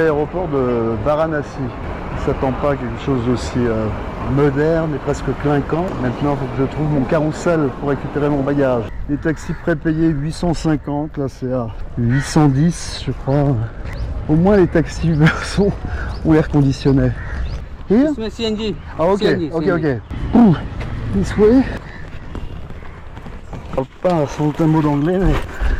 de Varanasi. Je ne s'attend pas à quelque chose d'aussi moderne et presque clinquant. Maintenant, il faut que je trouve mon carrousel pour récupérer mon bagage. Les taxis prépayés 850, là c'est à 810 je crois. Au moins les taxis Uber ont l'air conditionnés. Here? CNG. Ah ok, CNG, ok, CNG. ok. Ouh, this way. Je parle pas sans un mot d'anglais, mais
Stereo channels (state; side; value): identical; both; correlation 1.00